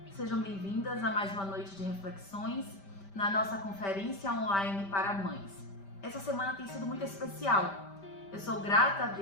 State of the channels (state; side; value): late; right; 5.1 ms